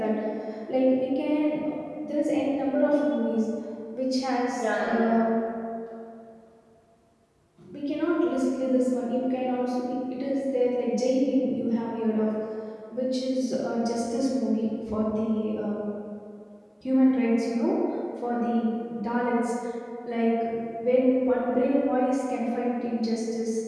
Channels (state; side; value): identical; both; correlation 1.00